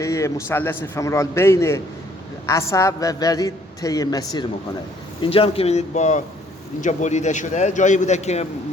مثلث فمورال بین عصب و ورید طی مسیر میکنه. اینجا هم که می‌بینید با اینجا بریده شده جایی بوده که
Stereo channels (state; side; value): normal; both; correlation 0.62